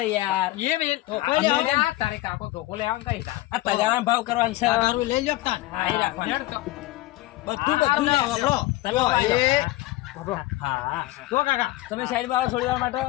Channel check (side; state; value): right; quieter; 17.5 dB